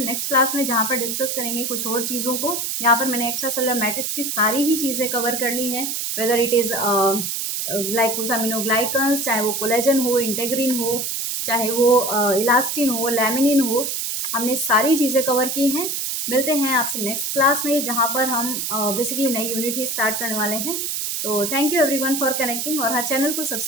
क्लास में, जहाँ पर डिस्कस करेंगे कुछ और चीज़ों को। यहाँ पर मैंने एक्स्ट्रा सेलुलर मैट्रिक्स की सारी ही चीज़ें कवर कर ली हैं, वेदर इट इज़ ग्लाइकोसामिनोग्लाइकन्स, चाहे वो कोलेजन हो, इंटेग्रिन हो, चाहे वो इलास्टिन हो, लैमिनिन हो, हमने सारी चीज़ें कवर की हैं। मिलते हैं आपसे नेक्स्ट क्लास में, जहाँ पर हम बेसिकली नई यूनिट ही स्टार्ट करने वाले हैं। तो thank you everyone for connecting, और हाँ, चैनल को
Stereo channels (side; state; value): right; noise; hiss, 2 dB below the sound